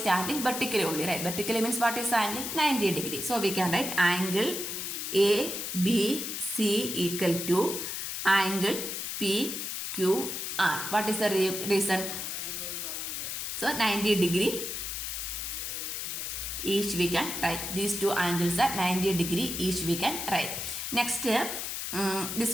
vertically only, right. Vertically means what is the angle? 90 degree. So we can write angle ABC equal to angle PQR. What is the reason? So 90 degree each we can write. These two angles are 90 degree each we can write. Next, this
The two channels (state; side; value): noise; left; hiss, 4 dB below the sound